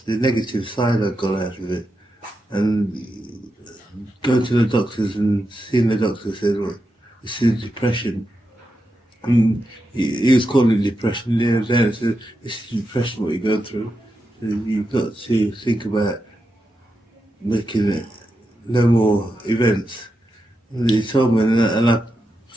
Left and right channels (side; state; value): both; normal; correlation 0.87